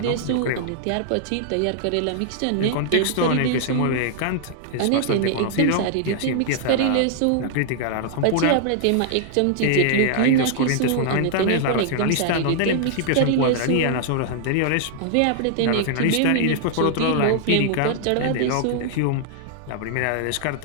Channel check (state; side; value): different; both; correlation -0.01